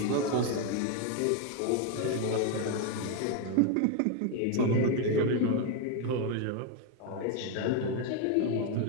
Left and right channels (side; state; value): both; different; correlation 0.01